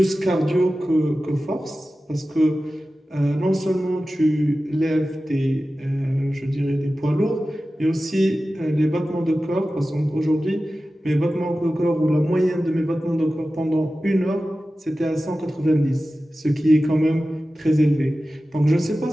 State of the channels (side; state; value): both; normal; correlation 0.95